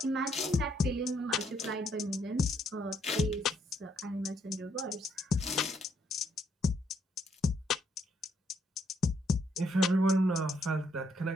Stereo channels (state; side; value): normal; both; correlation 0.72